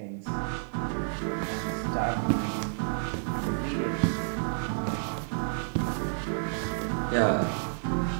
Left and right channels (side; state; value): left; silent; digital silence